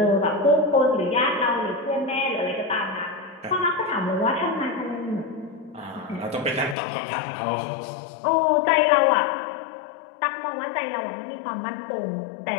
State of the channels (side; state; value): right; drops out; at 6.8 s